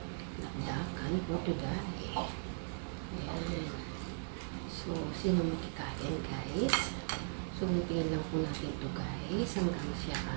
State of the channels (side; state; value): left; silent; digital silence